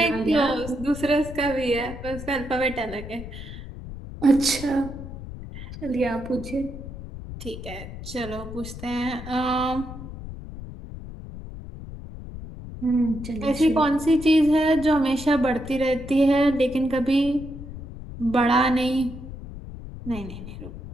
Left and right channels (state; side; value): noise; left; rumble, 11 dB below the sound